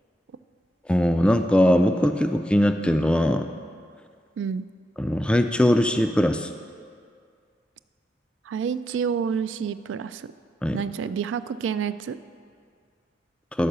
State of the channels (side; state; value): both; normal; correlation 0.85